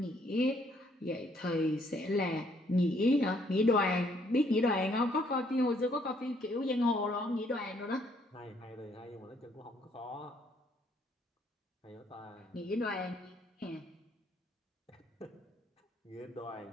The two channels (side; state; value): both; normal; correlation 0.67